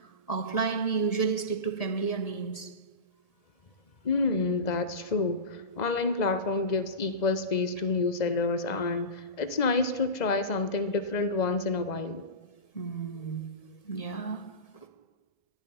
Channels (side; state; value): right; late; 1.8 ms